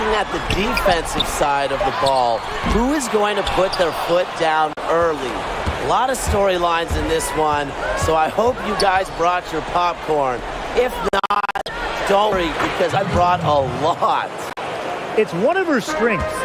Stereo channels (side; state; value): both; identical; correlation 1.00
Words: at the defensive side of the ball. Who is going to put their foot down early? A lot of storylines in this one, so I hope you guys brought your popcorn. If not, don't worry, because I brought a lot. It's one of her strengths,